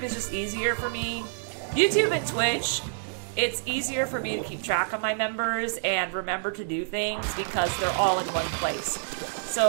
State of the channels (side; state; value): left; silent; digital silence